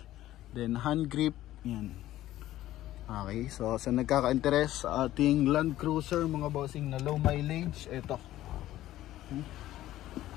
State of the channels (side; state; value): right; quieter; 14.3 dB